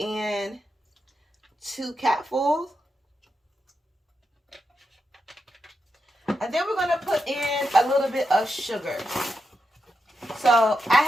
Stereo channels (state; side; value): normal; both; correlation 0.86